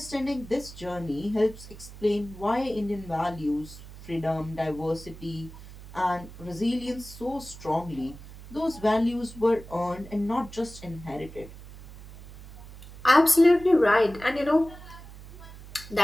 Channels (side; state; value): right; noise; hum, 16 dB below the sound